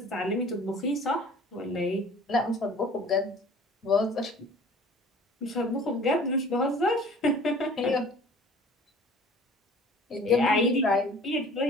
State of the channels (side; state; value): both; normal; correlation 0.47